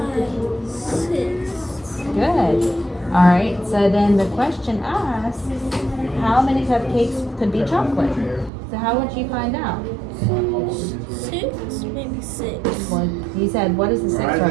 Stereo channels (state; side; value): drops out; left; at 8.5 s